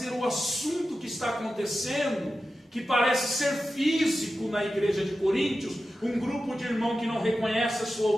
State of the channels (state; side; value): normal; both; correlation 0.92